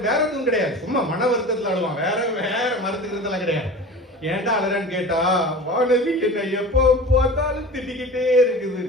வேற எதுவும் கிடையாது, சும்மா மன வருத்தத்துல அழுவான். வேற மருத்துக்கிறதுலாம் கிடையாது. ஏன்டா அழறான்னு கேட்டா, வானதி என்ன எப்போ பார்த்தாலும் திட்டிக்கிட்டே இருக்குது.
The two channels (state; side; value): normal; both; correlation 0.36